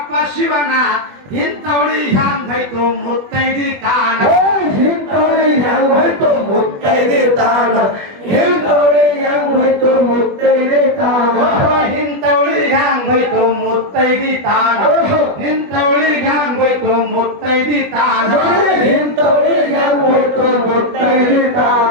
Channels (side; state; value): left; late; 20 ms